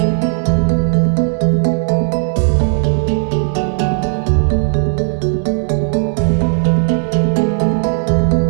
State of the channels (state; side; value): silent; left; digital silence